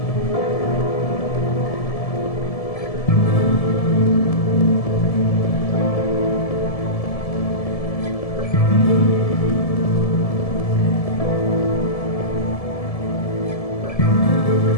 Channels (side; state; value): right; late; 1.7 ms